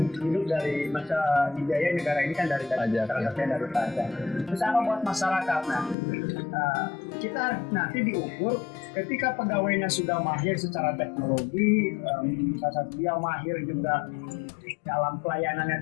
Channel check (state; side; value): drops out; right; at 6.0 s